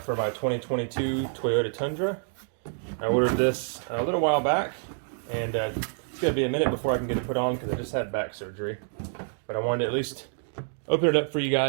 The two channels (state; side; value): silent; left; digital silence